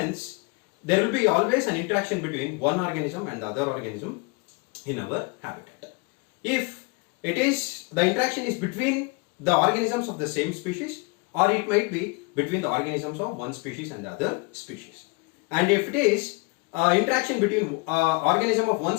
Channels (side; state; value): right; quieter; 29.3 dB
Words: there will be always an interaction between one organism and the other organism in our habitat. If the interaction is between the organisms of the same species, or it might be between the organisms of one species and the other species. And if it is interaction between organism of one